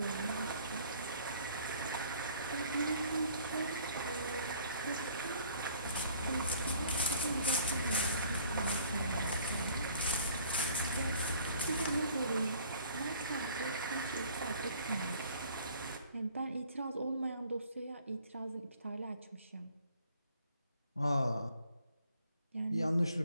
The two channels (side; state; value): both; inverted; correlation -0.54